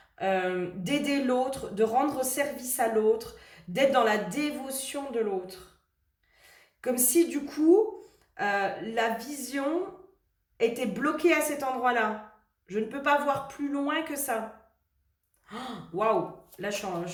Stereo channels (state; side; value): identical; both; correlation 1.00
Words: d'aider l'autre, de rendre service à l'autre, d'être dans la dévotion de l'autre. Comme si du coup, la vision était bloquée à cet endroit-là. Je ne peux pas voir plus loin que ça. Waouh! Là, je